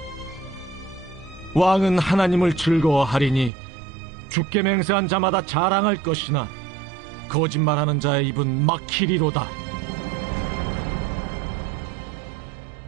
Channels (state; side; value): drops out; left; at 3.5 s